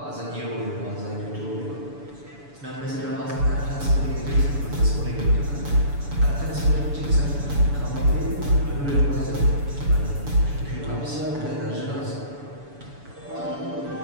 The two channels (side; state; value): left; late; 7.0 ms